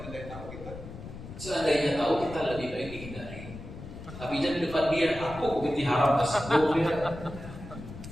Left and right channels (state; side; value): noise; left; rumble, 12 dB below the sound